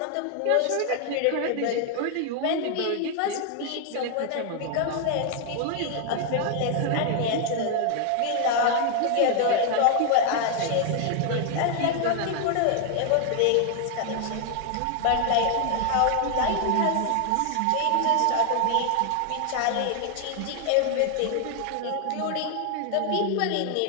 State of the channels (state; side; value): different; both; correlation 0.00